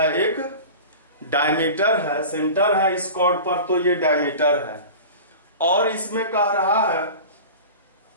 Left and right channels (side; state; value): both; inverted; correlation -0.35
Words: एक डायमीटर है, सेंटर है इस कॉर्ड पर, तो ये डायमीटर है। और इसमें कह रहा है